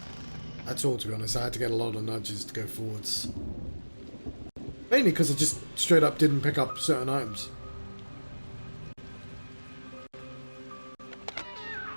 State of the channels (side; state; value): both; inverted; correlation -1.00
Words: at all, to be honest. I had to get a lot of nudges to go forwards. Mainly because I just straight up didn't pick up certain items.